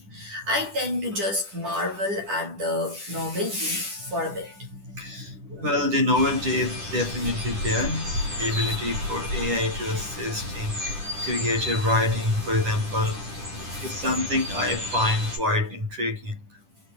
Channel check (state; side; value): late; left; 10 ms